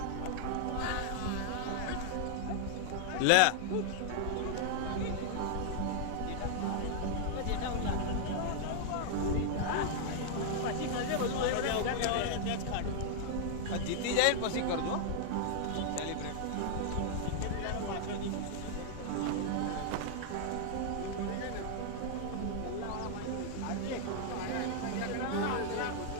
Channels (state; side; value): different; both; correlation -0.01